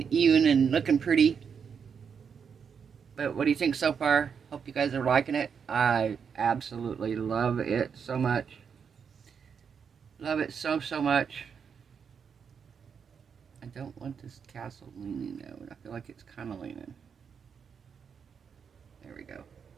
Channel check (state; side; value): quieter; left; 6.7 dB